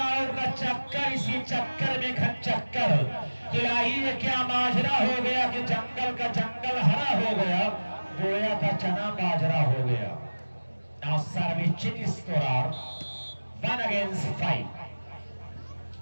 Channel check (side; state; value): both; inverted; correlation -1.00